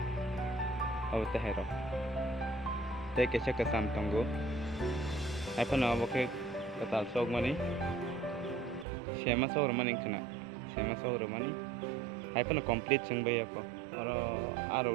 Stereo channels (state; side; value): drops out; left; at 8.8 s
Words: aw tehero te ke chaka sam tongo apa na okay ketal sok mani sema sok mani kena sema sok mani apa na complete sing bay ako